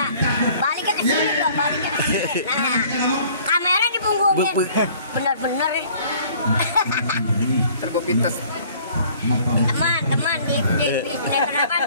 Baliknya ke sini dong, baliknya ke sini. Nah, kamera dipunggungin. Bener-bener. Tergopites. Teman di sinetron apa?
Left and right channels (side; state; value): both; inverted; correlation -0.54